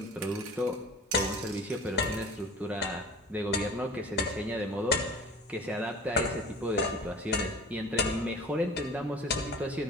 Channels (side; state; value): both; normal; correlation 0.42